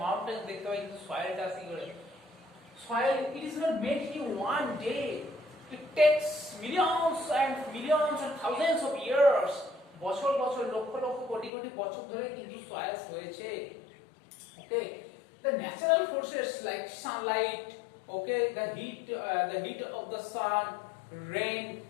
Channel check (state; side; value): drops out; right; at 11.5 s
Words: mountains দেখতে পাই, কিন্তু soilটা আসি করে? Soil, it is not made in one day. It takes millions and thousands of years. বছর বছর লক্ষ লক্ষ কোটি কোটি বছর ধরে কিন্তু soils হয়েছে. Okay, the natural forces like sunlight, okay, the heat of the sun, rain,